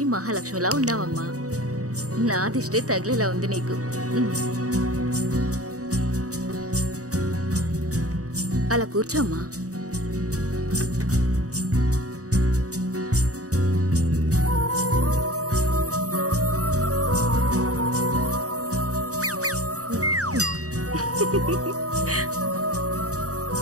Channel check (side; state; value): left; late; 0.66 ms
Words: మహాలక్ష్మిలా ఉన్నావమ్మా. నా దిష్టే తగిలేలా ఉంది నీకు. అలా కూర్చోమ్మా.